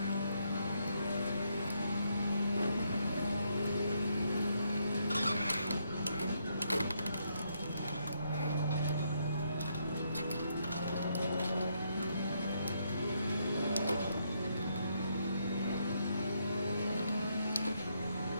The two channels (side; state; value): both; inverted; correlation -0.76